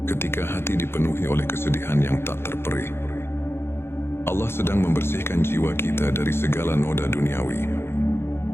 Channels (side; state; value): right; late; 0.12 ms